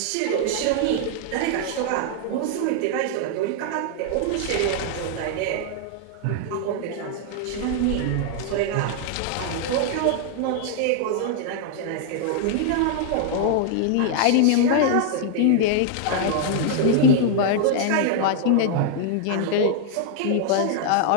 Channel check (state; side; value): different; both; correlation -0.01